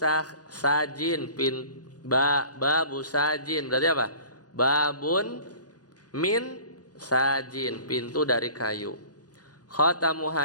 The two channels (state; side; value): late; right; 0.68 ms